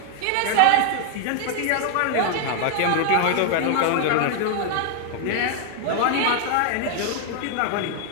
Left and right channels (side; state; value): both; different; correlation 0.00